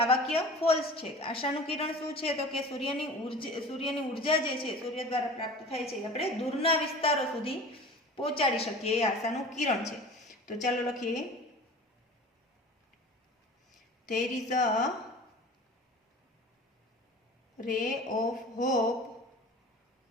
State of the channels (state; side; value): normal; both; correlation 0.39